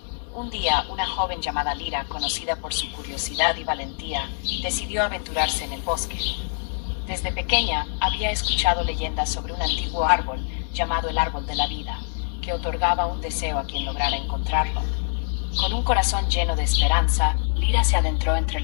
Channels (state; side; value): silent; right; digital silence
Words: Un día, una joven llamada Lira, conocida por su curiosidad y valentía, decidió aventurarse en el bosque. Desde pequeña había escuchado leyendas sobre un antiguo árbol llamado el Árbol de la Vida, que otorgaba un deseo a quien lograra encontrarlo. Con un corazón lleno de esperanza, Lira se adentró entre